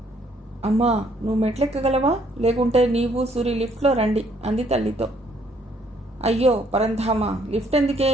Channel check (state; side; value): normal; both; correlation 0.66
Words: అమ్మా నువ్వు మెట్లెక్కగలవా? లేకుంటే నీవు సూరి లిఫ్ట్లో రండి అంది తల్లితో. అయ్యో పరంధామా, లిఫ్ట్ ఎందుకే?